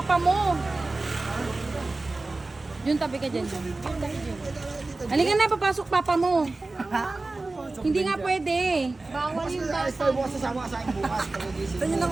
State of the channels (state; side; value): quieter; left; 3.3 dB